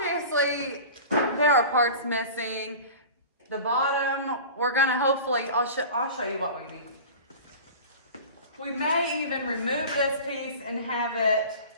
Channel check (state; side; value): inverted; both; correlation -0.36